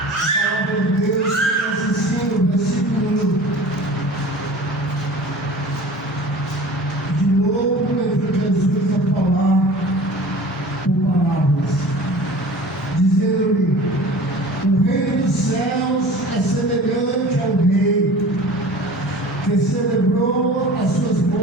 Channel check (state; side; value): normal; both; correlation 0.41